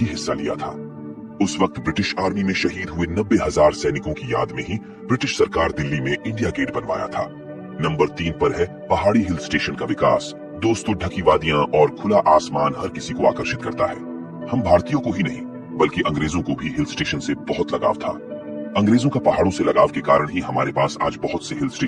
हिस्सा लिया था। उस वक्त ब्रिटिश आर्मी में शहीद हुए 90,000 सैनिकों की याद में ही ब्रिटिश सरकार दिल्ली में इंडिया गेट बनवाया था। नंबर 3 पर है पहाड़ी हिल स्टेशन का विकास। दोस्तों, ढकी वादियां और खुला आसमान हर किसी को आकर्षित करता है। हम भारतीयों को ही नहीं, बल्कि अंग्रेजों को भी हिल स्टेशन से बहुत लगाव था। अंग्रेजों का पहाड़ों से लगाव के कारण ही हमारे पास आज बहुत से हिल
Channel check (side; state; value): both; identical; correlation 1.00